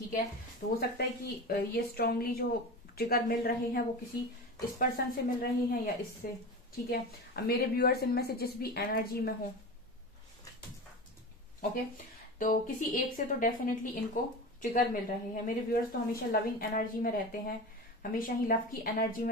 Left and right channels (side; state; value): both; normal; correlation 0.28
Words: है। तो हो सकता है कि ये स्ट्रांगली जो ट्रिगर मिल रहे हैं वो किसी इस पर्सन से मिल रहे हैं या इससे, ठीक है। अब मेरे व्यूअर्स इनमें से जिस भी एनर्जी में हो, ओके, तो किसी एक से तो डेफिनेटली इनको ट्रिगर मिल रहे हैं। मेरे व्यूअर्स तो हमेशा लविंग एनर्जी में रहते हैं, हमेशा ही लव की एनर्जी